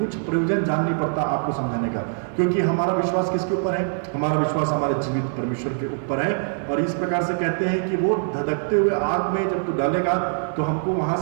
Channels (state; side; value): silent; left; digital silence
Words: प्रयोजन जान नहीं पड़ता आपको समझाने का, क्योंकि हमारा विश्वास किसके ऊपर है, हमारा विश्वास हमारे जीवित परमेश्वर के ऊपर है। और इस प्रकार से कहते हैं कि वो धधकते हुए आग में जब तू डालेगा तो हमको वहां